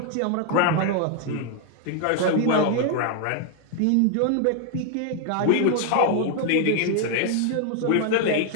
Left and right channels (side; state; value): both; different; correlation 0.00